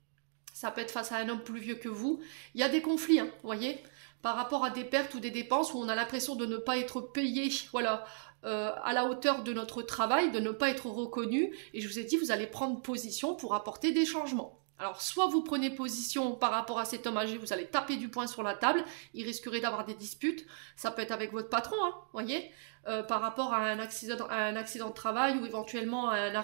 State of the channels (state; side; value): silent; left; digital silence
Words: Ça peut être face à un homme plus vieux que vous. Il y a des conflits, hein, vous voyez, par rapport à des pertes ou des dépenses où on a l'impression de ne pas être payé, voilà, à la hauteur de notre travail, de ne pas être reconnu. Et je vous ai dit, vous allez prendre position pour apporter des changements. Alors, soit vous prenez position par rapport à cet homme âgé, vous allez taper du poing sur la table, il risquerait d'avoir des disputes, ça peut être avec votre patron, hein, voyez, par rapport à un accident de travail ou éventuellement à un